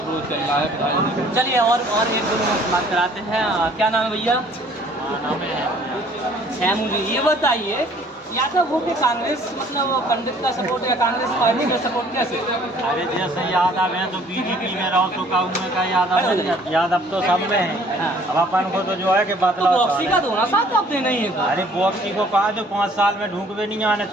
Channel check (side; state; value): both; normal; correlation 0.57